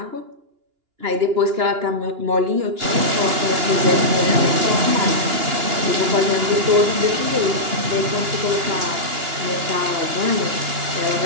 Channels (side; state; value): left; late; 2.9 ms